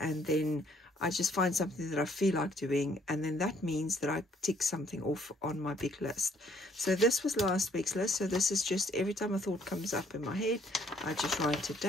then I just find something that I feel like doing, and then that means that I tick something off on my big list. So this was last week's list. So this is just every time a thought comes up in my head, I just write it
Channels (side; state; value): both; normal; correlation 0.65